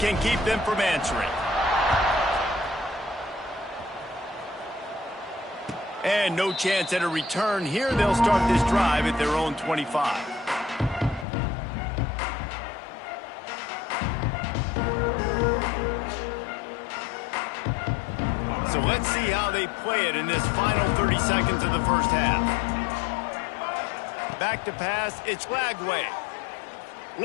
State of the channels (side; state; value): right; drops out; at 11.2 s